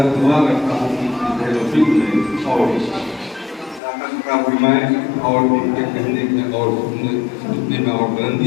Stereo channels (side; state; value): right; drops out; at 3.8 s